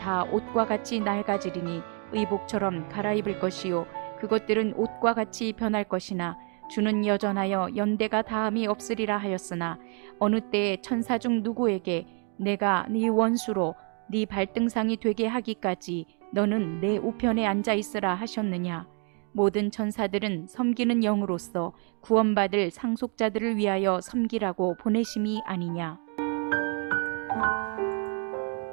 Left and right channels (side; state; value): left; quieter; 39.6 dB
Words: 옷과 같이 낡아지리니 의복처럼 갈아입을 것이요 그것들은 옷과 같이 변할 것이나 주는 여전하여 연대가 다함이 없으리라 하였으나 어느 때에 천사 중 누구에게 내가 네 원수로 네 발등상이 되게 하기까지 너는 내 우편에 앉아 있으라 하셨느냐. 모든 천사들은 섬기는 영으로서 구원받을 상속자들을 위하여 섬기라고 보내심이 아니냐.